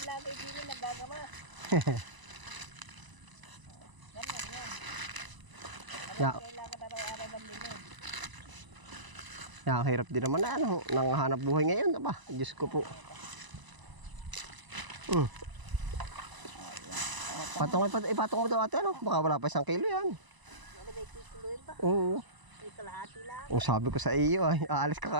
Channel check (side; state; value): left; late; 1.0 ms